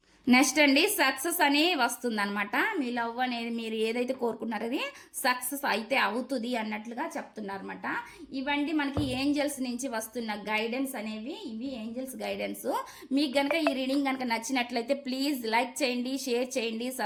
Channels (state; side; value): identical; both; correlation 1.00